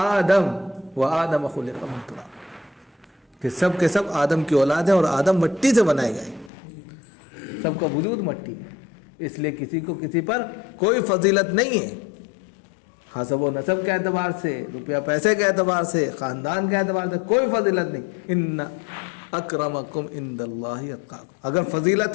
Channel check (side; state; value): right; drops out; at 6.5 s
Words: و آدم خلق من تراب، کہ سب کے سب آدم کی اولاد ہیں اور آدم مٹی سے بنائے گئے، سب کا وجود مٹی ہے، اس لیے کسی کو کسی پر کوئی فضیلت نہیں ہے۔ حسب و نسب کے اعتبار سے، روپیہ پیسے کے اعتبار سے، خاندان کے اعتبار سے کوئی فضیلت نہیں. ان اکرمکم عند اللہ اتقاکم. اگر